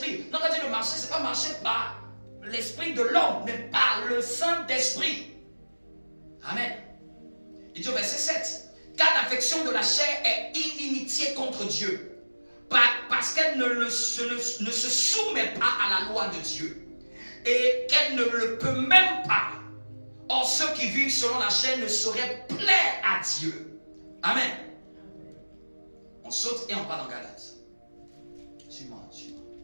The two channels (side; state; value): both; inverted; correlation -1.00